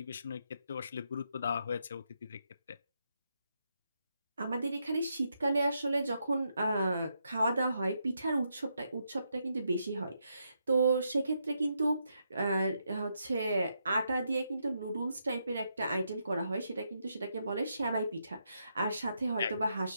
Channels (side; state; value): both; inverted; correlation -0.80